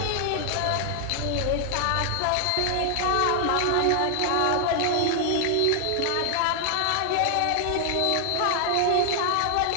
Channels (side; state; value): both; different; correlation 0.00